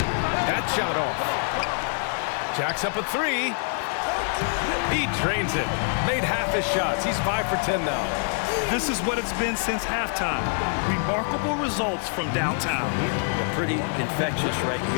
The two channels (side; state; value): right; silent; 61 dB below the other